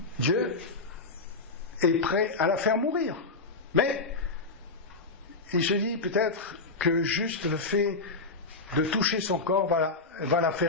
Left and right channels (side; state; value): right; quieter; 3.7 dB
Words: Dieu est prêt à la faire mourir. Mais il se dit peut-être que juste le fait de toucher son corps va la